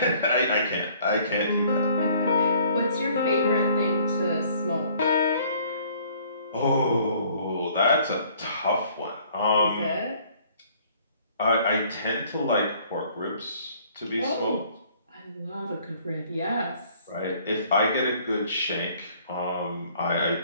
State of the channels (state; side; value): inverted; both; correlation -0.58